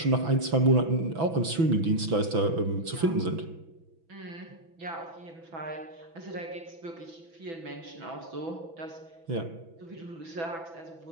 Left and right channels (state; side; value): late; left; 6.0 ms